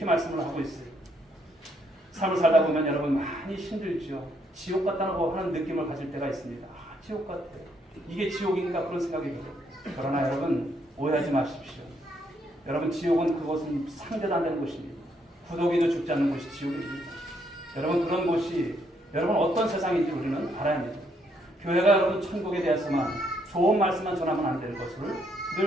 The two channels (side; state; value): both; normal; correlation 0.73